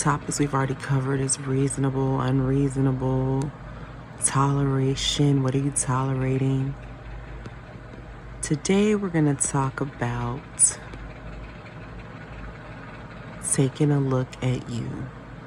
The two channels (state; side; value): identical; both; correlation 1.00